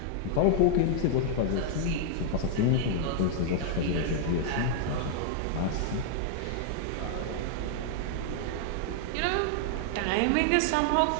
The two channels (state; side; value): different; both; correlation 0.00